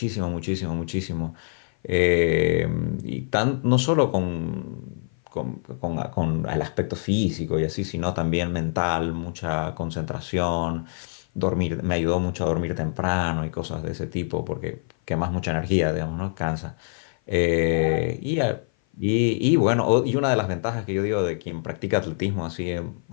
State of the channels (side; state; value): right; silent; 56 dB below the other